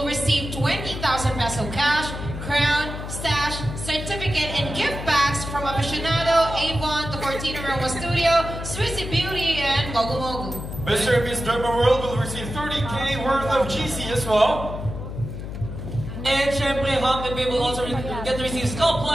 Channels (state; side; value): noise; left; hum, 8 dB below the sound